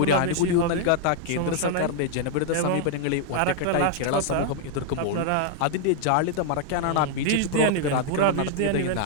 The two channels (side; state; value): both; different; correlation -0.01